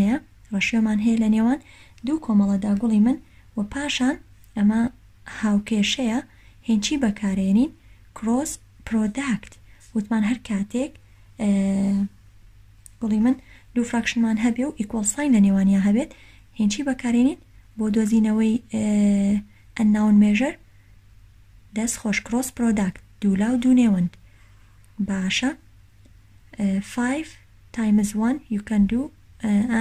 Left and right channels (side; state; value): both; identical; correlation 1.00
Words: ڕەشیۆمان هەیە لە نێوان دوو کۆمەڵەدا گوڵی من و پاشان ئەمە هاوکێشەیە هێنچی بەکارێنین کڕۆس پرۆداکت وتمان هەر کاتێک گوڵی من دوو فراکشنمان هەبێ و ئیکۆڵ ساین لە نێوانیا هەبێت هێنچی بەکارێنین بۆ دۆزینەوەی ئەنناون مێژەر دەست خۆش کڕۆس پرۆداکت دوو لاو دوو نێوەند باشە 5 times 1 you can do